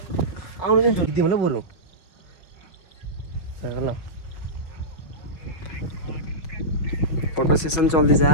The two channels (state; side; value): late; right; 5.4 ms